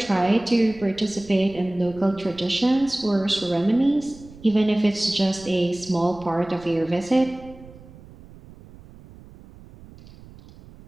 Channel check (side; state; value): right; noise; rumble, 21 dB below the sound